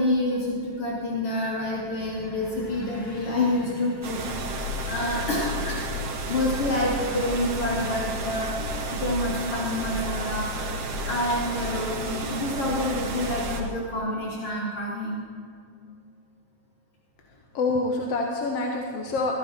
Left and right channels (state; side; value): late; right; 7.5 ms